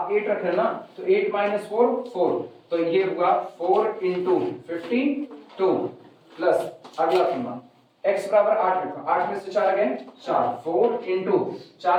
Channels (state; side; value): identical; both; correlation 1.00